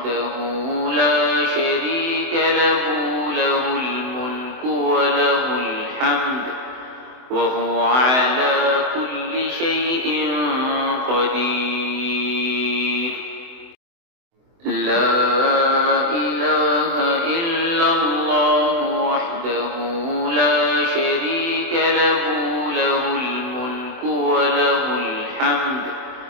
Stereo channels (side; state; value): left; late; 24 ms